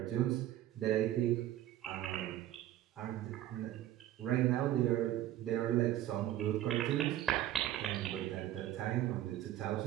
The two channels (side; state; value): left; quieter; 13.2 dB